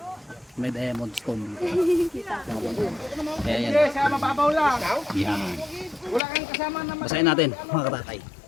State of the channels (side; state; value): right; drops out; at 6.2 s